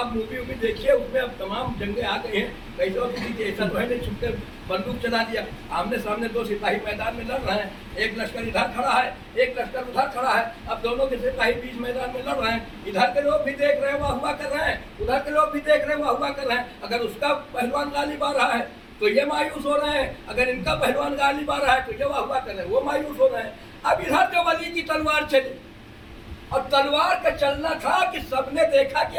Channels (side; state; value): both; identical; correlation 1.00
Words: मूवी वूवी देखिए, उसमें अब तमाम जंगें आ गई हैं, कैसे होती थी कि ऐसा तो है नहीं, छुपके बंदूक चला दिया, आमने सामने 2 सिपाही मैदान में लड़ रहे हैं, एक लश्कर इधर खड़ा है, एक लश्कर उधर खड़ा है। अब दोनों के सिपाही बीच मैदान में लड़ रहे हैं, इधर के लोग भी देख रहे हैं, वाह हुआ कर रहे हैं, उधर के लोग भी देख रहे हैं, वाह हुआ कर रहे हैं। अगर उसका पहलवान गालिब आ रहा है तो ये मायूस हो रहे हैं, अगर इनका पहलवान गालिब आ रहा है तो ये वाह हुआ कर रहे हैं, वो मायूस हो रहे हैं। अब इधर जो अली की तलवार चली, और तलवार का चलना था कि सबने देखा कि